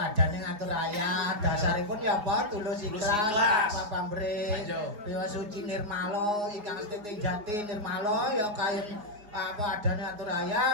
ngatur raya, dasaripun ya apa tulus ikhlas, apa pamrih, piwa suci nirmala, ingkang setiting jati nirmala ya kayen apa adane atur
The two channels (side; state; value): left; late; 4.8 ms